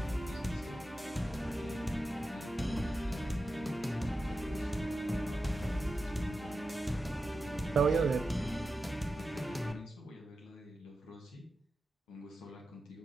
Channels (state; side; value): normal; both; correlation 0.91